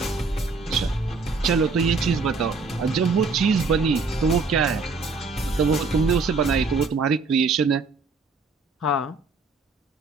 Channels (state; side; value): quieter; left; 4.1 dB